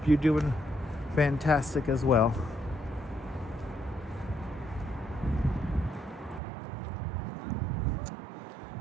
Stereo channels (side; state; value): left; drops out; at 6.4 s